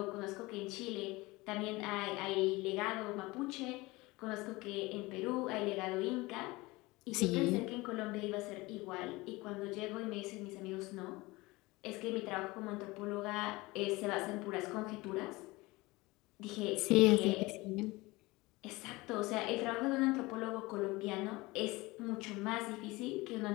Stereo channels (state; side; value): quieter; right; 21.9 dB